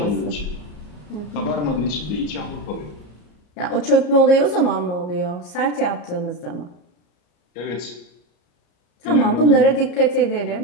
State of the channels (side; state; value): right; late; 34 ms